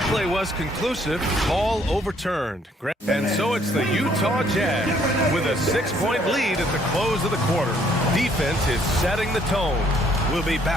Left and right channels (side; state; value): both; normal; correlation 0.65